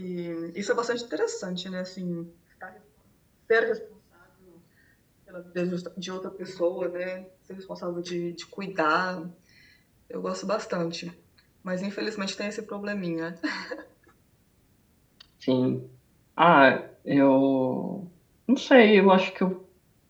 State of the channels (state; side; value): identical; both; correlation 1.00